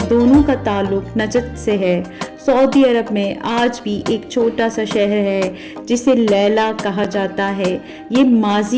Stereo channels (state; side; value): identical; both; correlation 1.00